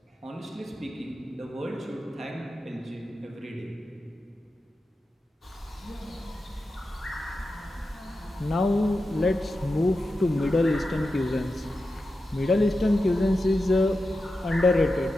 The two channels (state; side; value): normal; both; correlation 0.91